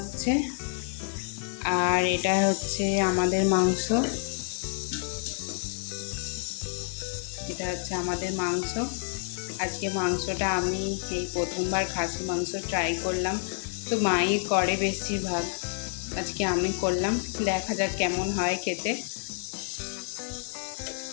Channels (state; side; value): silent; right; 59 dB below the other